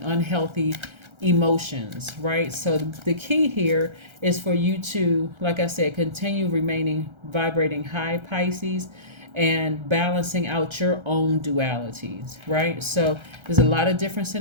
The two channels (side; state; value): left; late; 1.3 ms